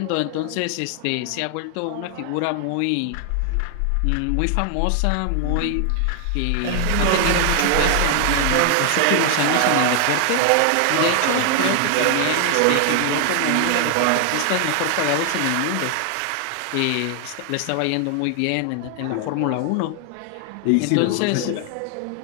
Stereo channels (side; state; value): both; different; correlation 0.00